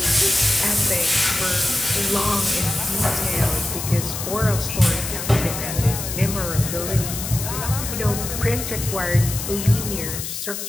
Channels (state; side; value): noise; left; hiss, 6 dB below the sound